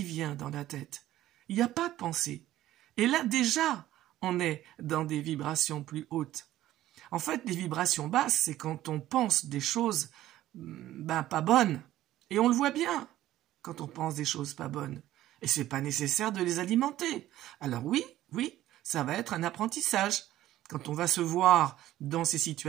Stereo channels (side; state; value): left; quieter; 14.1 dB